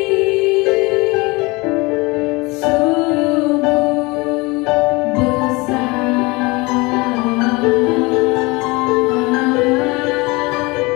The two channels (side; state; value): right; quieter; 24.7 dB